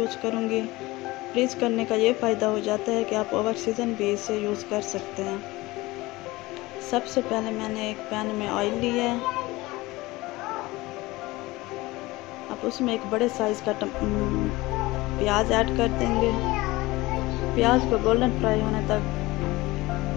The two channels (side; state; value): right; quieter; 20.4 dB